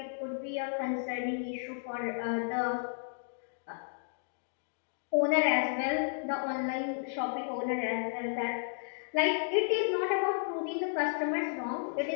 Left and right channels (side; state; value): right; silent; digital silence